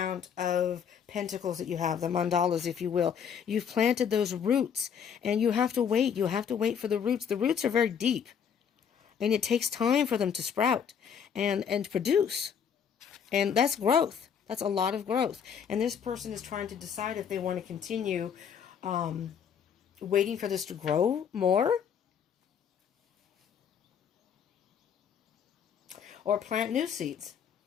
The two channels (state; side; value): quieter; right; 7.6 dB